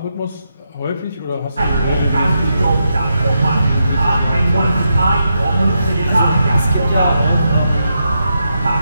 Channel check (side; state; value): both; inverted; correlation -0.84